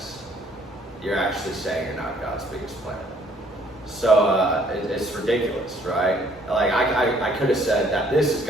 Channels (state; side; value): normal; both; correlation 0.61